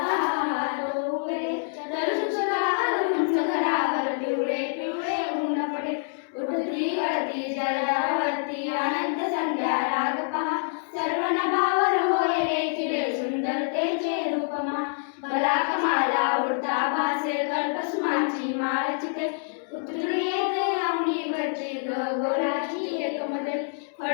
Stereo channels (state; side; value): silent; right; 61 dB below the other